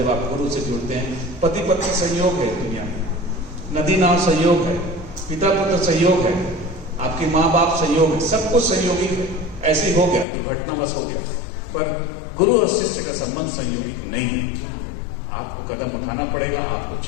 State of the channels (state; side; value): drops out; right; at 10.2 s